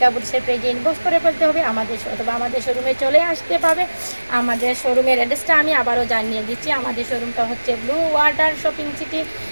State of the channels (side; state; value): both; inverted; correlation -1.00